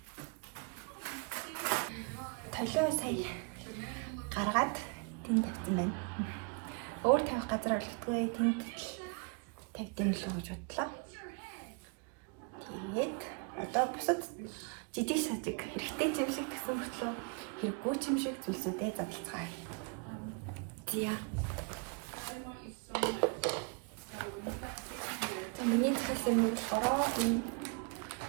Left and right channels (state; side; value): quieter; left; 33.6 dB